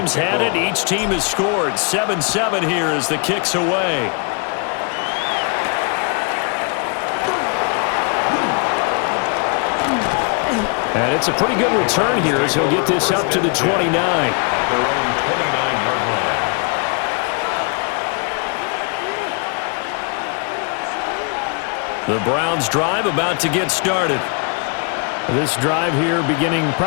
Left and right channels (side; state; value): right; quieter; 37.2 dB